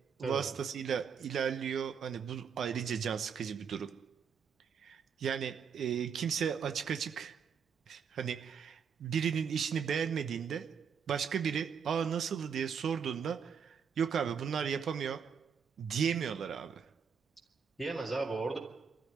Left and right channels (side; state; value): left; quieter; 6.8 dB